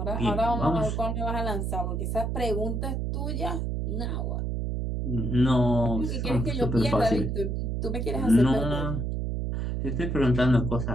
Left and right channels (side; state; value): right; noise; hum, 1 dB below the sound